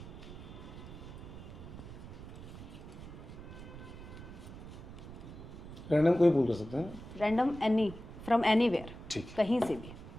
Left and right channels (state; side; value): noise; right; rumble, 13 dB below the sound